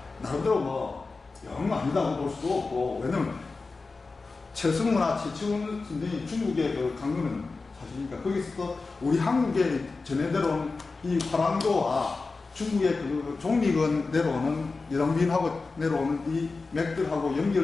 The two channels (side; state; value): right; quieter; 3.9 dB